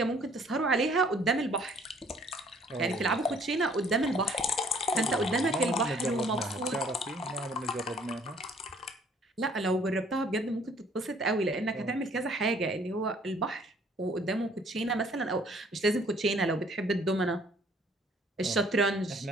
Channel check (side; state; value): both; normal; correlation 0.59